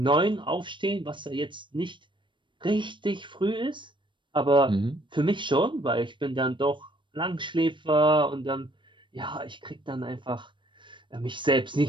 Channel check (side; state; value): left; late; 0.23 ms